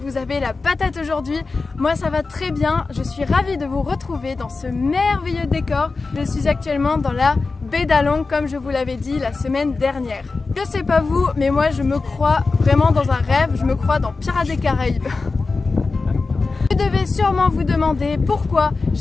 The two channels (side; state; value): right; quieter; 4.0 dB